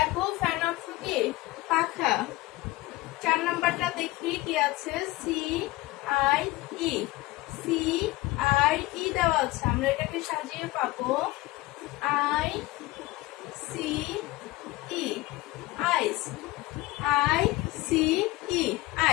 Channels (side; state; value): right; quieter; 19.7 dB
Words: ফ্যান অর্থ কি? পাখা। 4 নাম্বারটা দেখি কি আছে? C I E. C I E দেওয়া আছে, আমরা এটাকে সাজিয়ে পাবো I C E, ice. I C E,